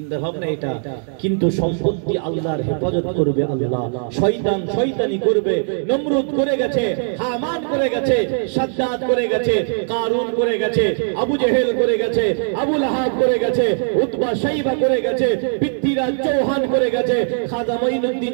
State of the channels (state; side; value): silent; left; digital silence